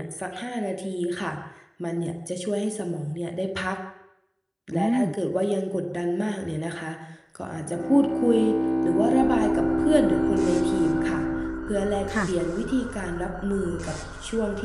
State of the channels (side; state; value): both; identical; correlation 1.00